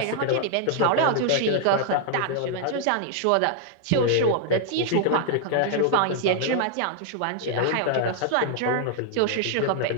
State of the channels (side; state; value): both; different; correlation 0.00